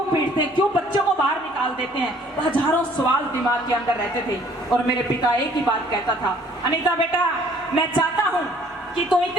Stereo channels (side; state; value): both; normal; correlation 0.58